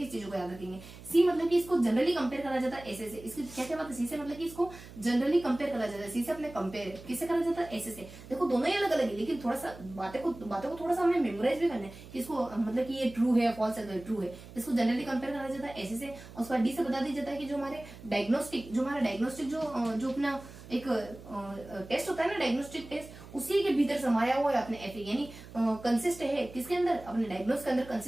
चीजों को याद रखेंगे। C मतलब कि इसको जनरली कंपेयर करा जाता है ऐसे से, इसकी क्या बात है, C से मतलब कि इसको जनरली कंपेयर करा जाता है, C से अपने कंपेयर किससे करा जाता है, ऐसे से। देखो दोनों ही अलग अलग है, लेकिन थोड़ा सा बातों को थोड़ा सा हमें मेमोराइज भी करना है कि इसको मतलब कि ये ट्रू है, फॉल्स है, ट्रू है, इसको जनरली कंपेयर करा जाता है ऐसे से। और उसके बाद D से बता दिया जाता है कि जो हमारा डायग्नोस्टिक जो अपना एक टेस्ट होता है ना, डायग्नोस्टिक टेस्ट, उसी के भीतर समाया हुआ है अपने FA, यानी कंसिस्ट है किसके अंदर, अपने डायग्नोस के अंदर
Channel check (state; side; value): noise; right; hum, 17 dB below the sound